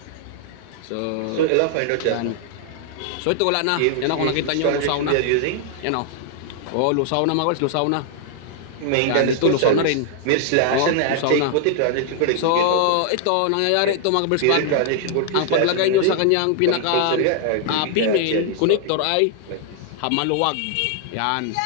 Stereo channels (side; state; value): both; different; correlation 0.00